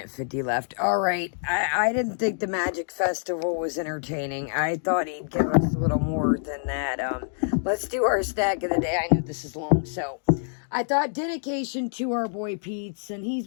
50 left. Alright, I didn't think the Magic Festival was entertaining. I thought he'd give us a little more than that. Let's do our stack of the day. I know this is long, so I thought dedication to our boy Pete's, and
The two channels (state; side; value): silent; right; digital silence